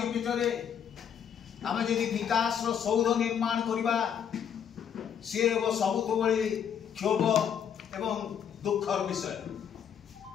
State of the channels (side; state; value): right; quieter; 8.3 dB